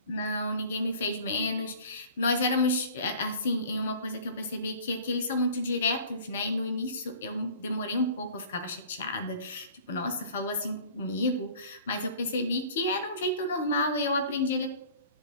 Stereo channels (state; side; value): inverted; both; correlation -0.46